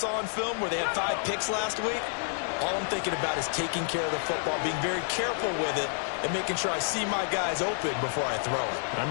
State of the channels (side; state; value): right; silent; 58 dB below the other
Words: on film where they had 5 picks last week, all I'm thinking about is taking care of the football, being very careful with it, and making sure I see my guys open before I throw it. I